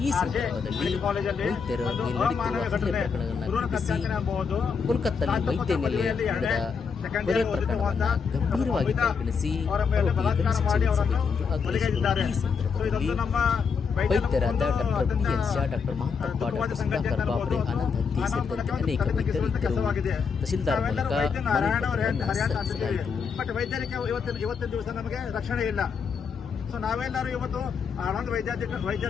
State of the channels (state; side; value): quieter; right; 5.8 dB